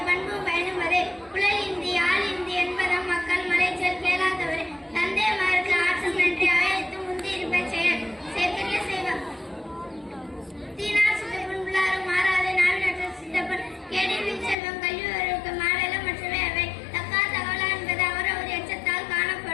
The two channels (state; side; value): drops out; right; at 14.6 s